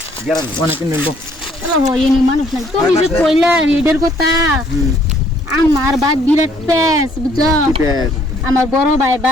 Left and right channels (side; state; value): both; normal; correlation 0.63